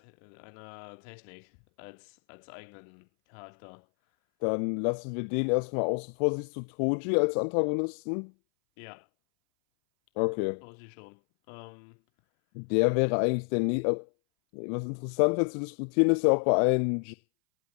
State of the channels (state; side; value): silent; right; 58 dB below the other